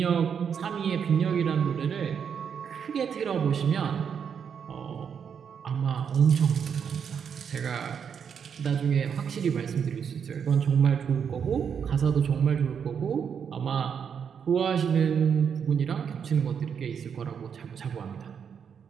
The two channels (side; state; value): left; quieter; 7.3 dB